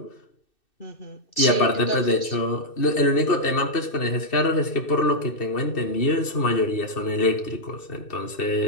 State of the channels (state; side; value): late; right; 2.6 ms